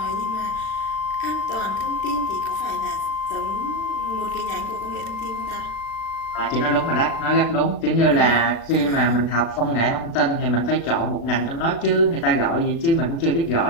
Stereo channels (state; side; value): late; right; 36 ms